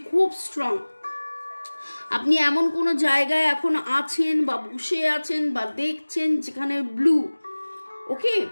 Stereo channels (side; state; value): both; inverted; correlation -1.00